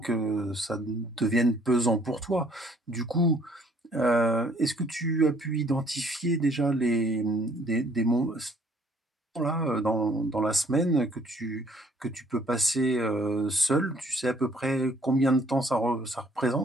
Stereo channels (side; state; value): both; normal; correlation 0.61